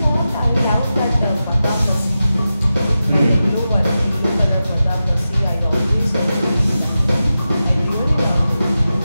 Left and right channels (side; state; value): both; inverted; correlation -0.92